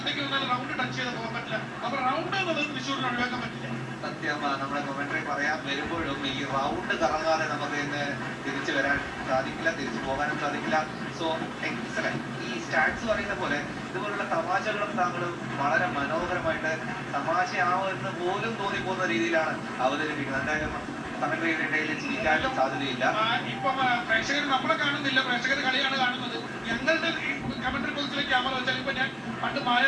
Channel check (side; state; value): both; identical; correlation 1.00